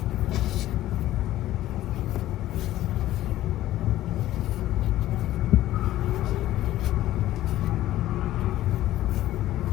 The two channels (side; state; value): right; quieter; 14.5 dB